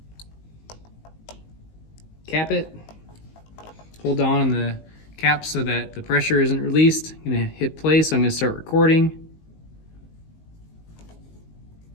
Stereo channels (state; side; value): late; right; 19 ms